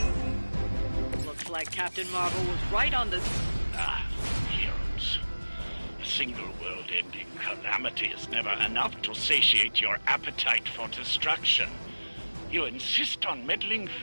Looks like Captain Marvel was right on the... Heroes. A single world-ending calamity is never enough to satiate your appetite for destruction. You insist on meddling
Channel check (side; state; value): both; inverted; correlation -1.00